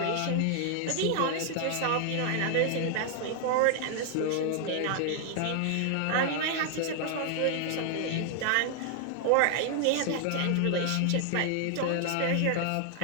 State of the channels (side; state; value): both; different; correlation 0.00